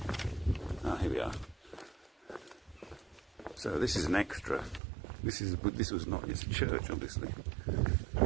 Ah, here we are. So this is an extra. This was not. It's a church, obviously,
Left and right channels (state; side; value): drops out; left; at 4.8 s